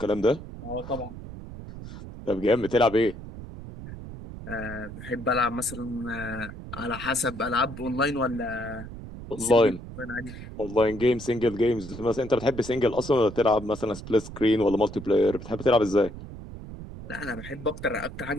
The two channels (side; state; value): right; noise; rumble, 12 dB below the sound